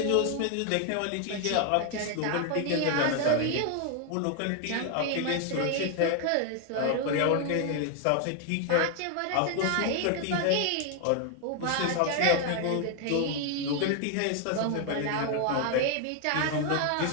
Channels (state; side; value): different; both; correlation 0.00